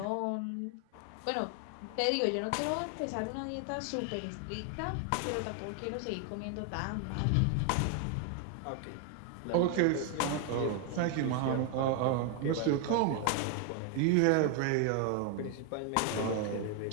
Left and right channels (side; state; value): both; different; correlation 0.01